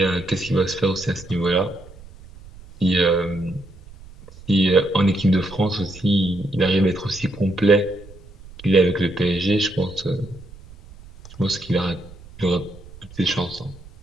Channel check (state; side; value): noise; right; rumble, 19 dB below the sound